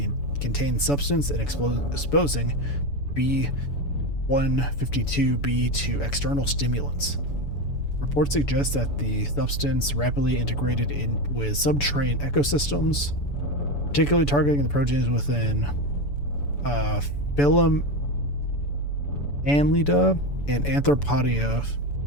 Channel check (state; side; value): late; right; 7.0 ms